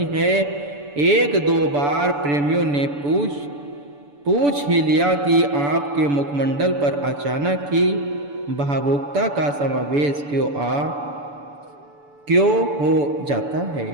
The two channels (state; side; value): late; left; 7.0 ms